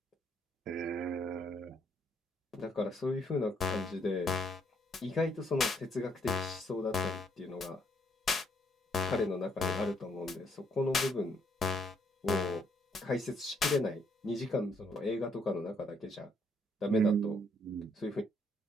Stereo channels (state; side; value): normal; both; correlation 0.70